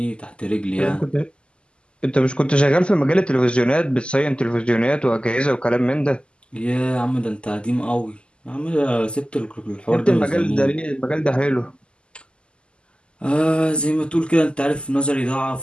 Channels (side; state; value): right; late; 0.051 ms